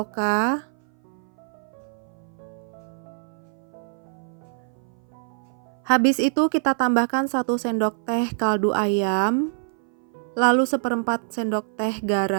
Habis itu kita tambahkan 1 sendok teh kaldu ayam, lalu seperempat sendok teh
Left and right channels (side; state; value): left; silent; 57 dB below the other